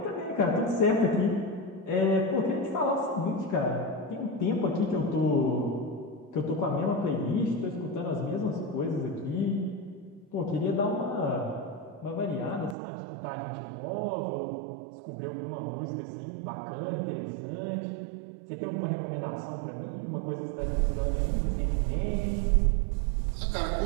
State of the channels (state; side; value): drops out; left; at 12.8 s